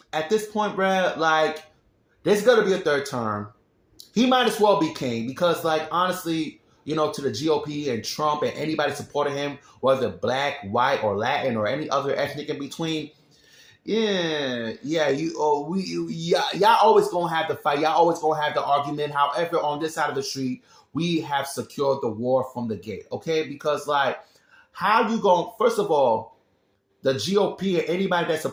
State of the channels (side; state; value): both; identical; correlation 1.00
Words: this point, bruh, like, there's gonna be a third term. He might as well be king because, like, honestly, to the GOP and Trump and anybody supporting him, whether black, white, or Latin or any other ethnic in between, y'all always gonna have the fight. Y'all always gonna have the argument. However, on this side of the street, we have secured the war from the gate, okay? Because, like, how you going? First of all, the GOP and anybody that